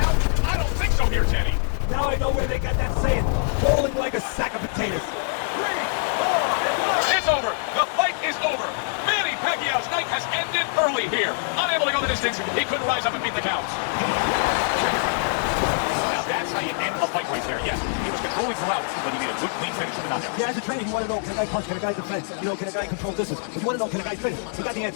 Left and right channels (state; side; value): silent; right; digital silence